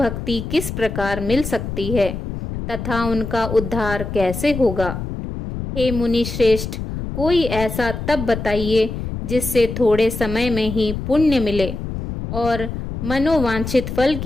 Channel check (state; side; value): noise; left; rumble, 6 dB below the sound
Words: किस प्रकार मिल सकती है तथा उनका उद्धार कैसे होगा। हे मुनि श्रेष्ठ, कोई ऐसा तप बताइए जिससे थोड़े समय में ही पुण्य मिले और मनोवांछित फल